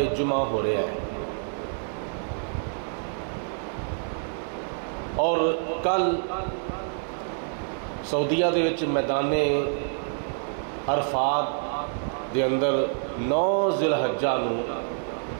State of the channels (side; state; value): left; silent; digital silence